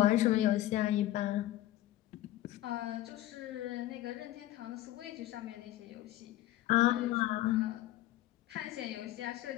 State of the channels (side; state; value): right; quieter; 14.9 dB